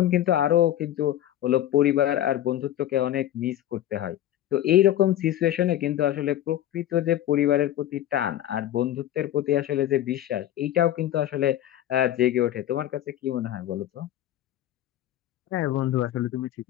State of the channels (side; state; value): right; quieter; 12.4 dB